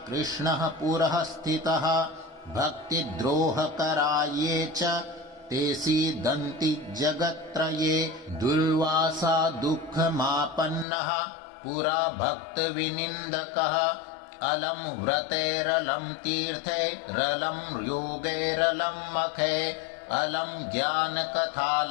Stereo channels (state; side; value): drops out; right; at 10.9 s